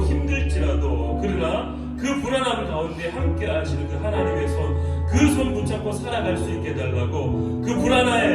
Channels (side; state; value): both; identical; correlation 1.00